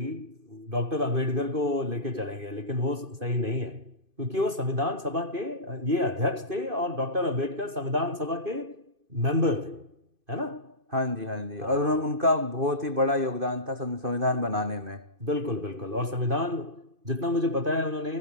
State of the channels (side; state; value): left; late; 2.5 ms